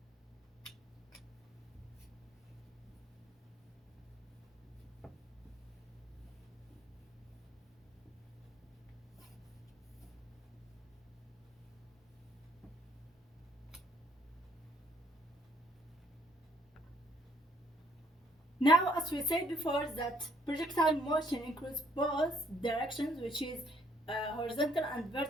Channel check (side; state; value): both; normal; correlation 0.65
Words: Now, as we said before, that projectile motion includes both directions, which is horizontal and